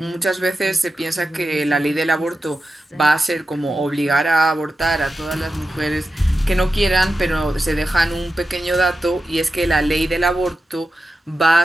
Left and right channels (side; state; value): both; normal; correlation 0.91